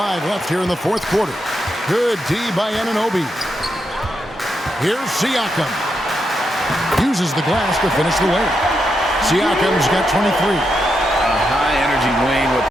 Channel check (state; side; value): normal; both; correlation 0.83